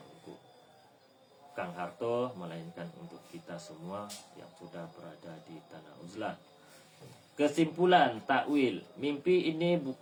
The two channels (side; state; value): both; identical; correlation 1.00